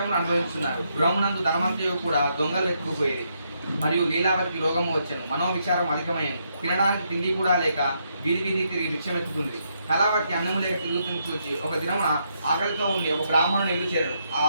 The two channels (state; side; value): inverted; both; correlation -0.77